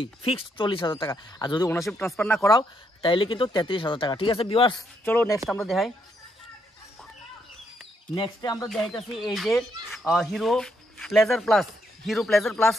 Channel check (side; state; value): both; normal; correlation 0.76